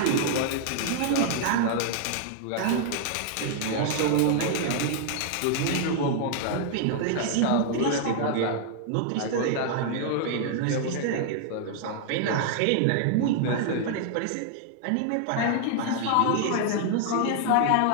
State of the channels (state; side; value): different; both; correlation 0.00